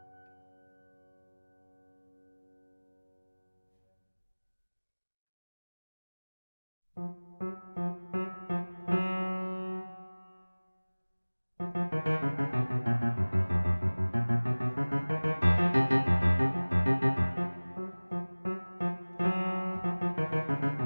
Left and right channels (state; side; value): inverted; both; correlation -1.00